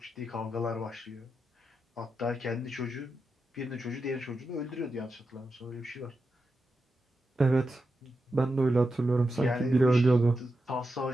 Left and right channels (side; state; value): both; normal; correlation 0.89